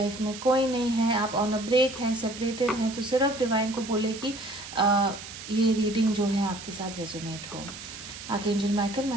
में कोई नहीं है, आप ऑन अ ब्रेक हैं, सेपरेटेड हैं, तो सिर्फ डिवाइन को बोले कि ये रीडिंग जो है आपके साथ रेजोनेट हो। Archangel Michael, my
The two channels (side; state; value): right; noise; hiss, 12 dB below the sound